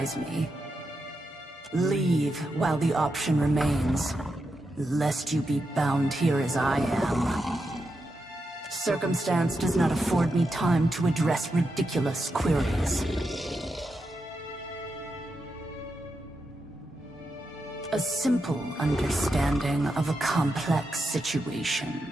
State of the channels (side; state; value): both; normal; correlation 0.86